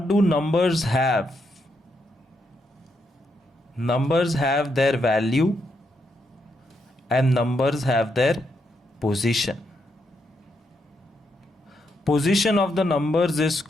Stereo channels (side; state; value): both; normal; correlation 0.79